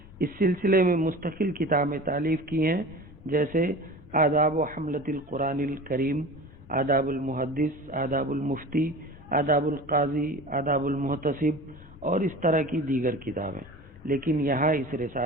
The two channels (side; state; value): left; noise; rumble, 21 dB below the sound